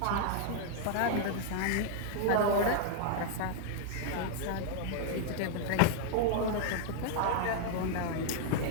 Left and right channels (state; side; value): different; both; correlation 0.00